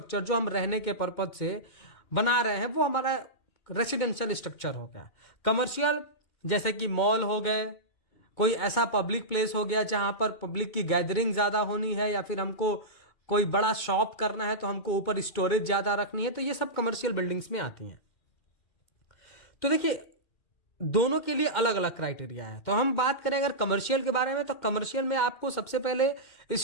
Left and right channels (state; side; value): late; right; 2.4 ms